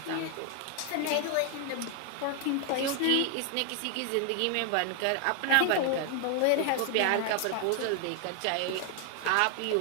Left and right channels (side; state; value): both; different; correlation 0.00